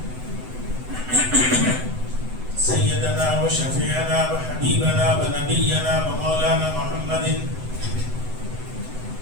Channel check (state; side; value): late; left; 7.9 ms